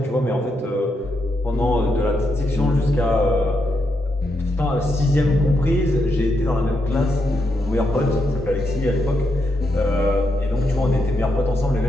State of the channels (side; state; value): both; normal; correlation 0.81